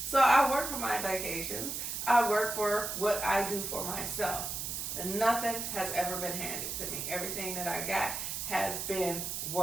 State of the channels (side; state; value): right; noise; hiss, 4 dB below the sound